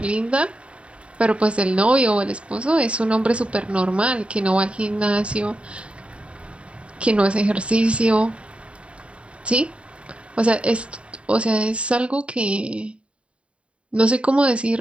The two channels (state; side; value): late; left; 0.060 ms